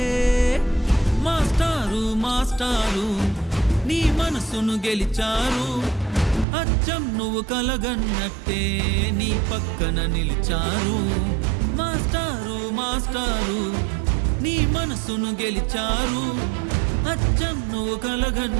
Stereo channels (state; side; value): drops out; left; at 6.5 s